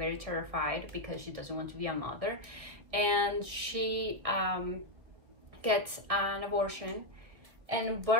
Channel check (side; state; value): left; late; 2.0 ms